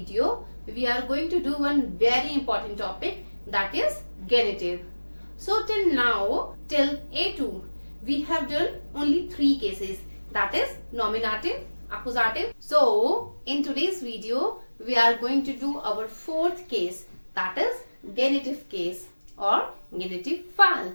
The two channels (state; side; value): inverted; both; correlation -1.00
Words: we are going to do one very important topic, that is genitive. So till now, till A2 we have done only 3 cases, that is nominative, accusative. So in today's video we are going to do our 4th case, that is genitive case or genitive fall.